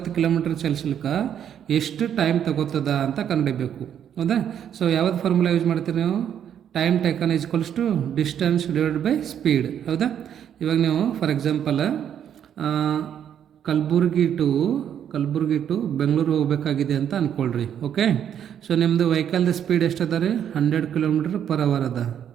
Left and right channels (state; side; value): quieter; left; 9.3 dB